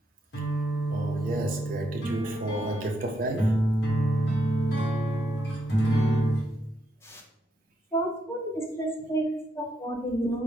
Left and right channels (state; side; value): normal; both; correlation 0.79